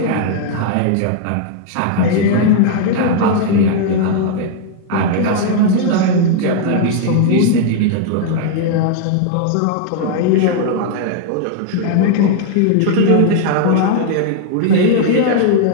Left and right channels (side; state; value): both; different; correlation 0.00